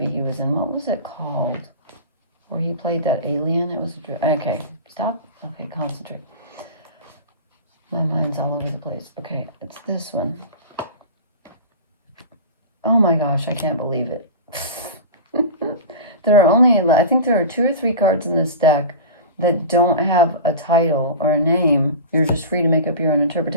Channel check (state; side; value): inverted; both; correlation -0.31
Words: he was in. What was it called? Where he played that alien? It was okay, stop. Okay, concentrate. My mind's all over the place. Okay, it's this one. Oh my gosh, I can't believe it. There are only, I think there are 2 or 3 cards in this deck that don't have a title or a name. You're just free to make up your own